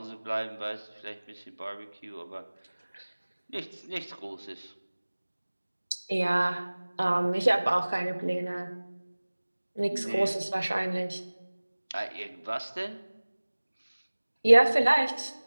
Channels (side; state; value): both; inverted; correlation -1.00